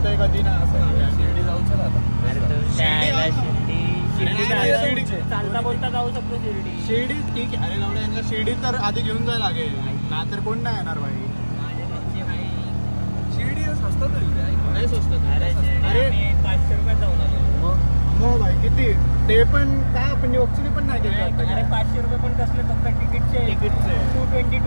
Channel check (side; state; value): both; inverted; correlation -1.00